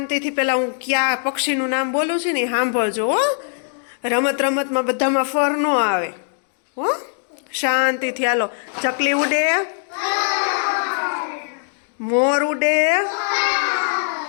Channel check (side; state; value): right; silent; digital silence